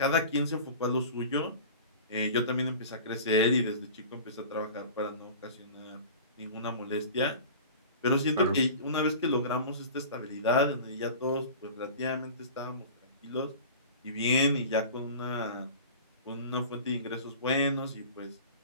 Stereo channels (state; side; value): inverted; both; correlation -0.37